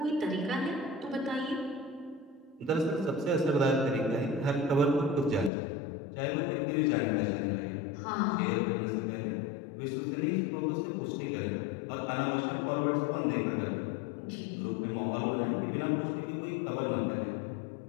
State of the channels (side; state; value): right; drops out; at 5.5 s